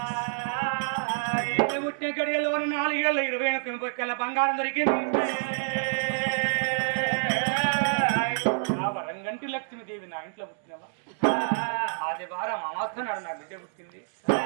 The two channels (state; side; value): silent; left; digital silence